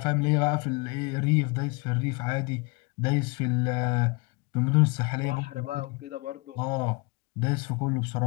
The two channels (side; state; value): right; quieter; 27.6 dB